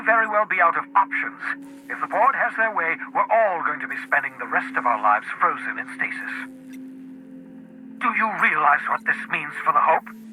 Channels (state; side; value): identical; both; correlation 1.00